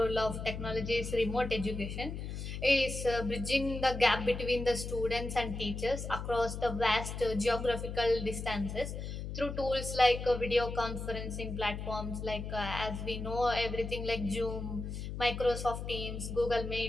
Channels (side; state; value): left; noise; hum, 6 dB below the sound